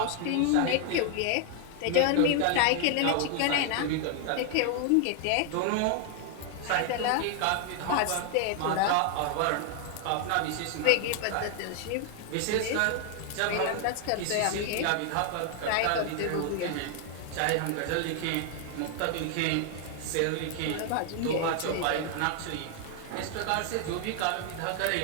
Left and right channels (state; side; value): different; both; correlation 0.00